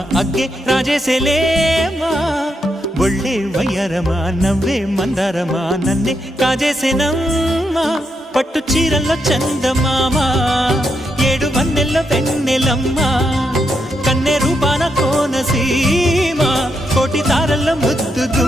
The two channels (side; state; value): both; normal; correlation 0.81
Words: అగ్గే రాజేసేలేమా ఒళ్ళే వయ్యారమా నవ్వే మందారమా నన్నే కాజేసేనమ్మా పట్టు చీరల్లో చందమామా ఏడు వన్నెల్లో వెన్నెలమ్మా కన్నె రూపాన కోనసీమ కోటి తారల్లో